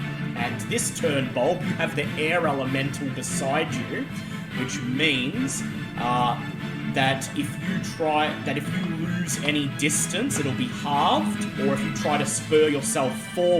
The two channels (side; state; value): both; identical; correlation 1.00